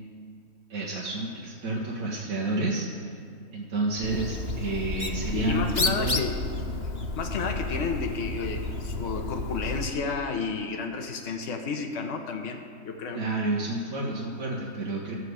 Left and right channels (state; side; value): late; left; 2.9 ms